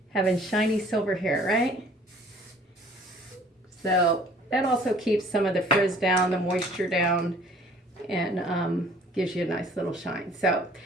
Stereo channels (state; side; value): normal; both; correlation 0.54